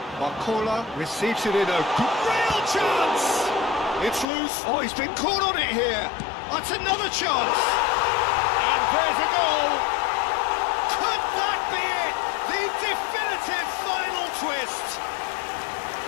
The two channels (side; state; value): right; drops out; at 4.2 s